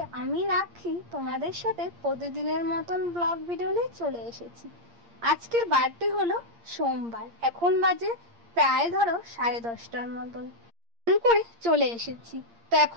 আমি রাখি তোমাদের সাথে প্রতিদিনের মতন ব্লগ ভিডিও নিয়ে চলে এসেছি। আজকের বারটি হলো সোমবার। এখন বাজে প্রায় ধরো 10:30টার মতন করে চলে এসেছি। তো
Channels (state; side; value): late; left; 8.6 ms